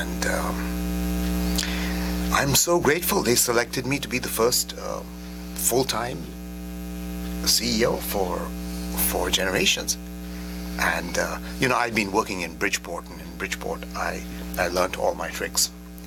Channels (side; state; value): both; identical; correlation 1.00